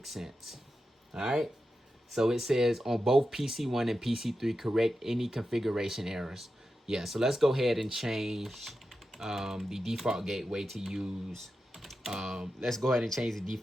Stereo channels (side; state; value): both; normal; correlation 0.90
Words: sense. All right. So it says on both PC1 and PC3, correct any configuration errors. Yeah. So let's go ahead and change the default gateway to use. Let's go ahead and change the